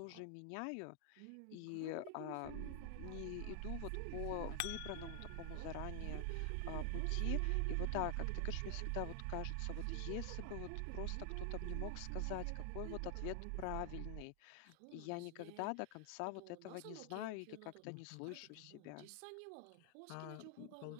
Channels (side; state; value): both; different; correlation 0.00